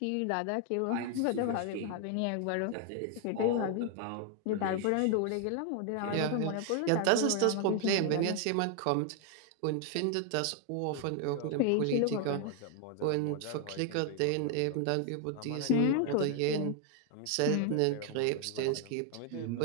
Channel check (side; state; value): both; different; correlation 0.00